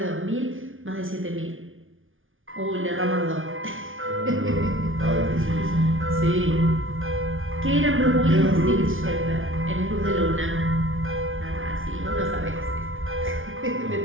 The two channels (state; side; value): late; left; 0.58 ms